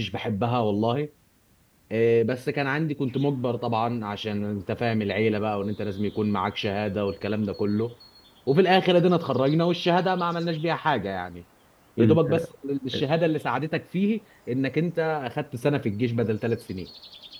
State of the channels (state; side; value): identical; both; correlation 1.00